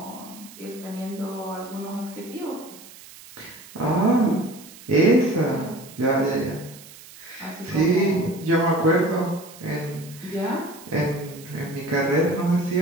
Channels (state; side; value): noise; right; hiss, 19 dB below the sound